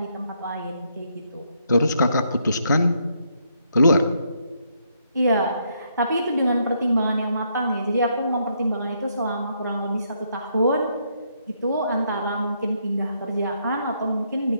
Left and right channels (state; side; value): inverted; both; correlation -0.74